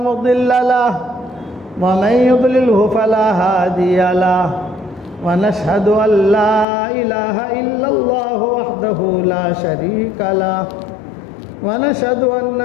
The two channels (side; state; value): right; drops out; at 6.7 s